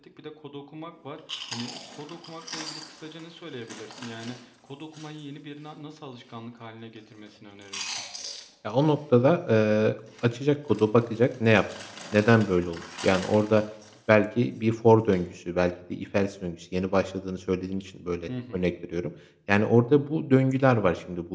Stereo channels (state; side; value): identical; both; correlation 1.00